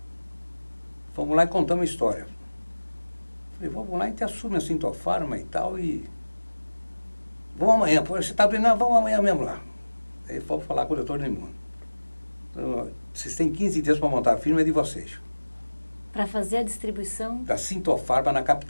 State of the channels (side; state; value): both; inverted; correlation -1.00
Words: Fomos lá e contamos a história. Falei, vamos lá, a gente assume a Sintofarma e tal, e vamos amanhã. Pô, você está doendo? Não, vamos amanhã mesmo lá. Aí fomos falar com o doutor Edmundo. Então, vocês têm 15 dias para montar a firma, é de vocês. Para fazer a distribuição? Da Sintofarma na